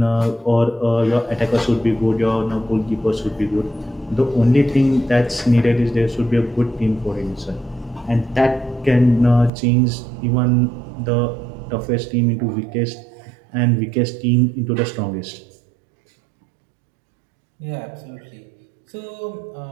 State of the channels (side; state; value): left; drops out; at 9.5 s